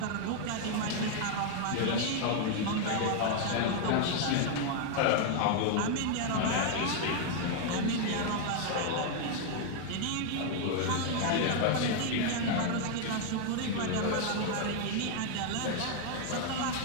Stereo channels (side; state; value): both; different; correlation 0.00